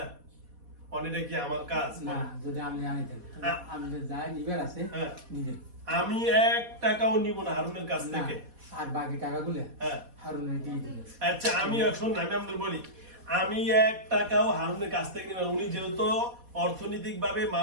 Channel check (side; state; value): left; late; 4.2 ms